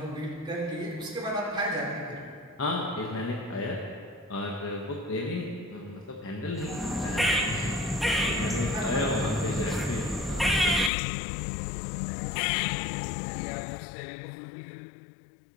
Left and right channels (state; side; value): drops out; right; at 10.9 s